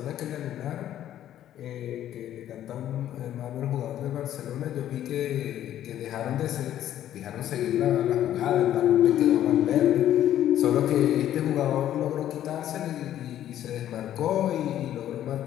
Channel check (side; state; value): right; quieter; 11.8 dB